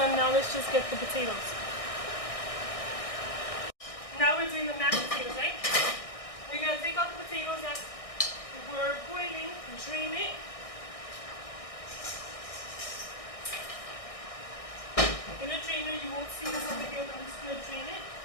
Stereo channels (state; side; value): late; right; 1.6 ms